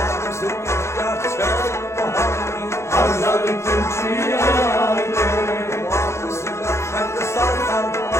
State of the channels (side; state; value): right; late; 0.13 ms